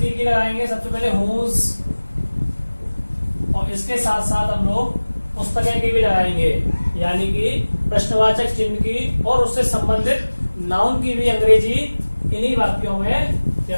की लगाएंगे सबसे पहले हुज, और इसके साथ साथ हम लोग पुस्तकें की भी लगाएंगे, यानी कि प्रश्नवाचक चिन्ह की और उससे संबंधित नाउन की भी अंग्रेजी इन्हीं वाक्यों में या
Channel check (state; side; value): inverted; both; correlation -1.00